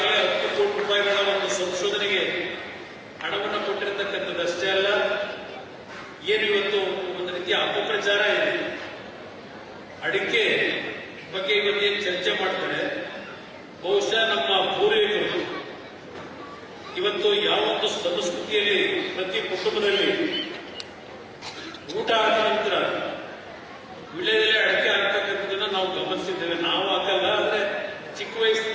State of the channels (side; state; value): both; identical; correlation 1.00